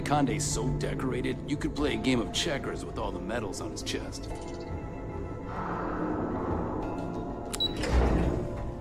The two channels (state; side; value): identical; both; correlation 1.00